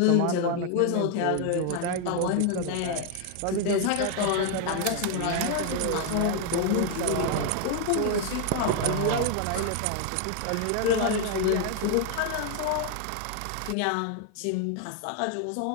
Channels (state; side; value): different; both; correlation 0.00